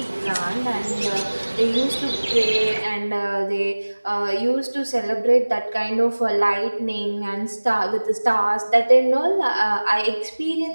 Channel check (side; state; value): both; inverted; correlation -1.00